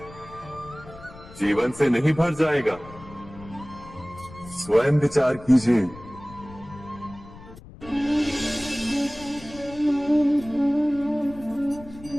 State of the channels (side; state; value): left; noise; rumble, 18 dB below the sound